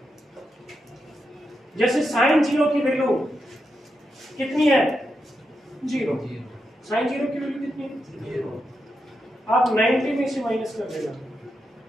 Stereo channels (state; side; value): normal; both; correlation 0.85